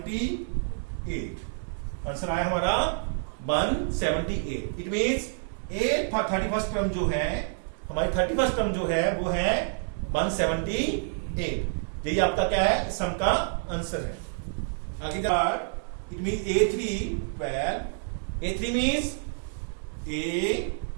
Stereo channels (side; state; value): left; silent; 59 dB below the other